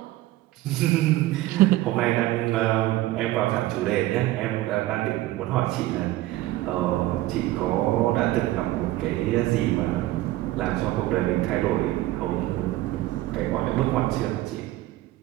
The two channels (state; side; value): quieter; left; 16.4 dB